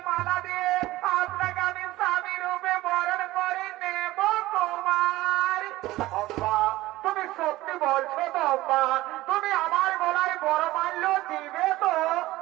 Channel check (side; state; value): left; quieter; 17.5 dB